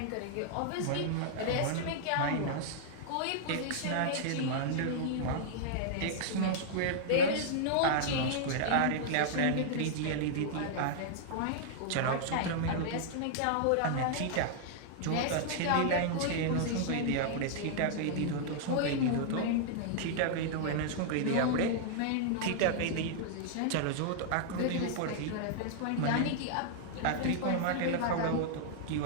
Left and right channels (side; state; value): both; different; correlation -0.01